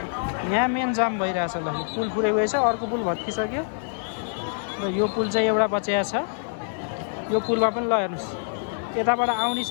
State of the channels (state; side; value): silent; right; 61 dB below the other